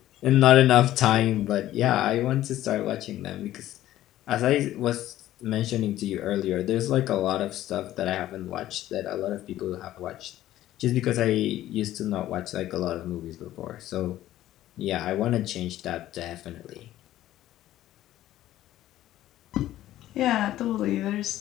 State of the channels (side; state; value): right; quieter; 13.9 dB